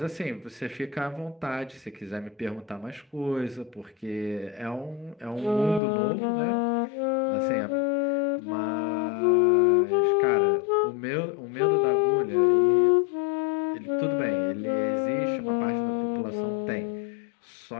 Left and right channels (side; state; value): right; drops out; at 5.8 s